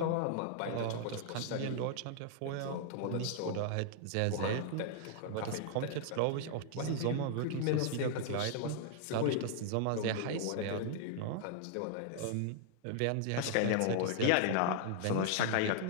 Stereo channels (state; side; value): different; both; correlation -0.01